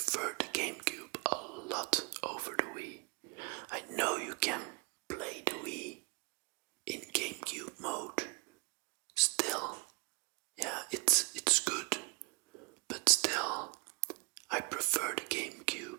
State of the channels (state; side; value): quieter; left; 30.1 dB